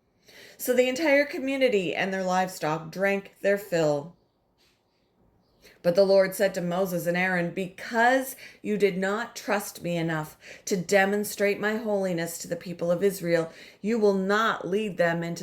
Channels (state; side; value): identical; both; correlation 1.00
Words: So the entire community and their livestock drank their fill. But the Lord said to Moses and Aaron, "Because you did not trust me enough to demonstrate my holiness to the people of Israel, you will not lead them